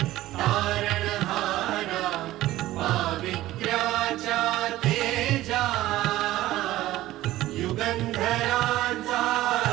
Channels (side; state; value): left; quieter; 15.7 dB